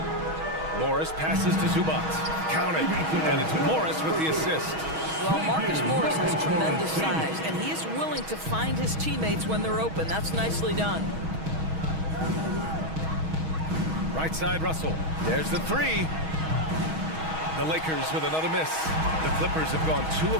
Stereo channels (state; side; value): late; left; 6.3 ms